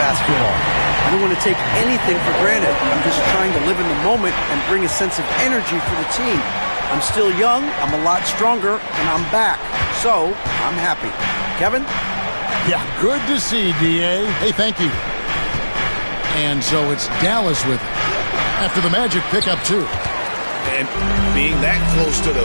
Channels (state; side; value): inverted; both; correlation -1.00